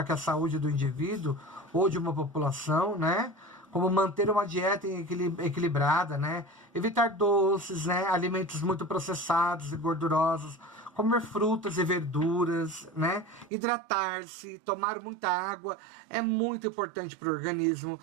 que a saúde do indivíduo ou de uma população, né? Como manter uma dieta equilibrada, né? Evitar doces, né? Alimentos muito processados e gordurosos, comer frutas e verduras, né? Hidratar-se, tomar muita água é muito importante para o organismo.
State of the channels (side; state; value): left; drops out; at 13.5 s